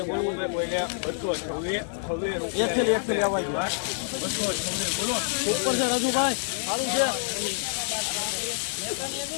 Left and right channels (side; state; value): right; silent; 60 dB below the other